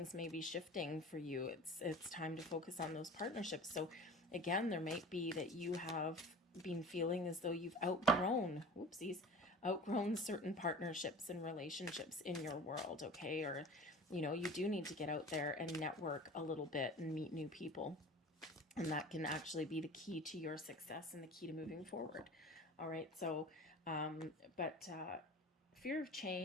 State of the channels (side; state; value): both; normal; correlation 0.39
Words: may be shifting for you. It's time to focus on those partnerships. So again, there might be that you have been feeling as though you've outgrown certain partnerships and relationships in your world, okay? Or, you do need to get out there and network a little bit and meet new people. And that can actually be the key to your success and the key to moving forward. All right. So, but fear of